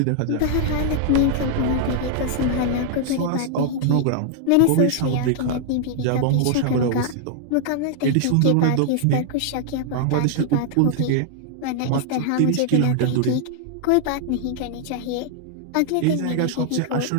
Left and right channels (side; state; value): both; different; correlation 0.00